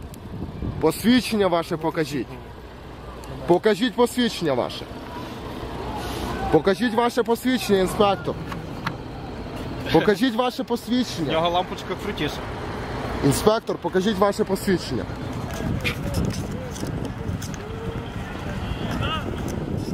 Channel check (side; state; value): both; identical; correlation 1.00